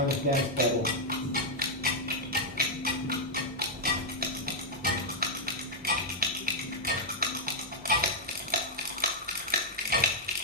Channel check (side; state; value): both; normal; correlation -0.03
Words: of dance battle.